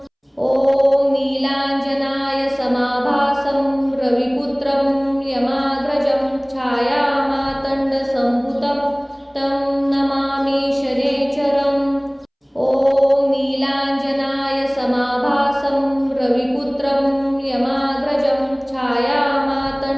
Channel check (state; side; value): identical; both; correlation 1.00